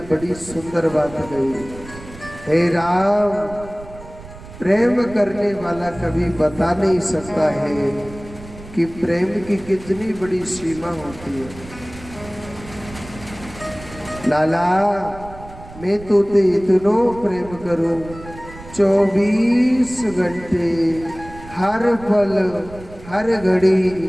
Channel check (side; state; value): right; noise; rumble, 17 dB below the sound